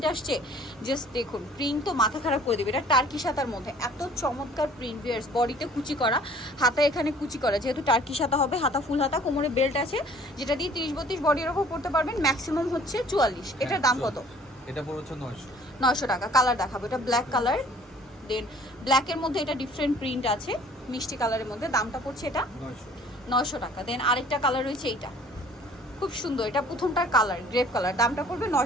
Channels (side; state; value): both; normal; correlation 0.54